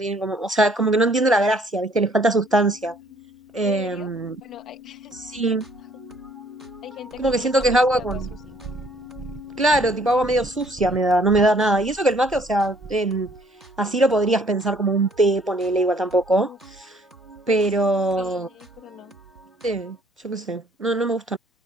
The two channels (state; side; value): normal; both; correlation 0.61